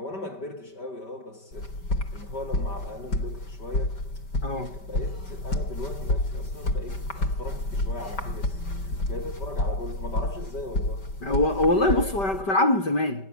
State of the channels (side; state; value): right; late; 5.1 ms